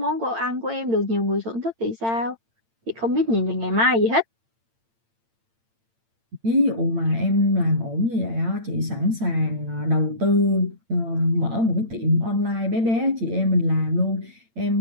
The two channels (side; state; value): left; late; 8.8 ms